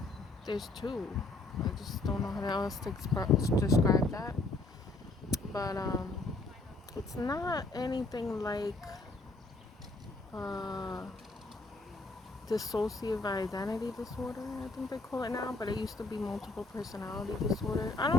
There's two. I just don't know how else to describe that. But it's not anything like uh dissociative identity disorder, I think they call it now, but it used to be multiple personality disorder. I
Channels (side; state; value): right; quieter; 3.3 dB